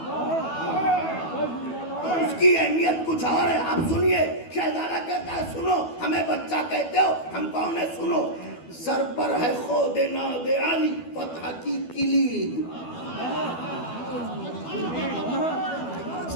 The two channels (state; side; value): late; right; 12 ms